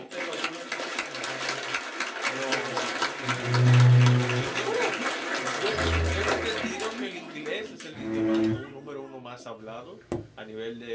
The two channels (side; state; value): both; identical; correlation 1.00